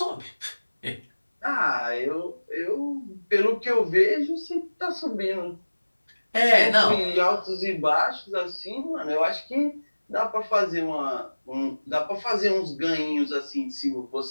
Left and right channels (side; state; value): both; inverted; correlation -1.00